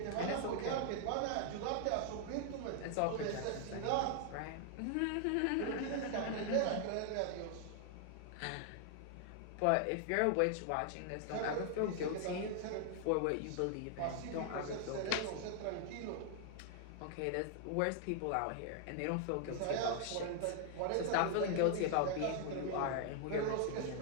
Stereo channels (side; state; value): both; different; correlation 0.00